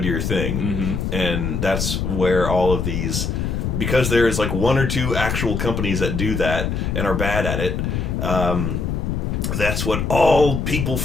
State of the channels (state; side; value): noise; left; rumble, 1 dB below the sound